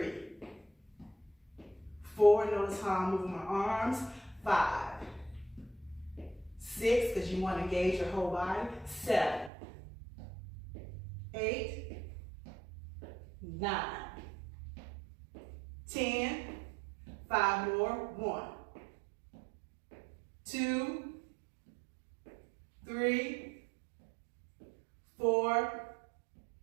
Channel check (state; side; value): drops out; left; at 9.5 s